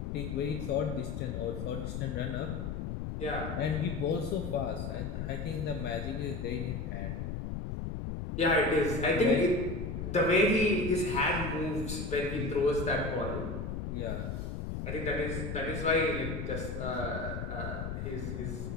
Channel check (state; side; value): noise; left; rumble, 4 dB below the sound